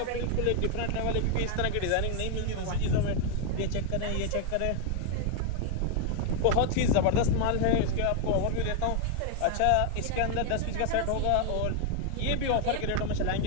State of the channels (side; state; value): both; different; correlation 0.00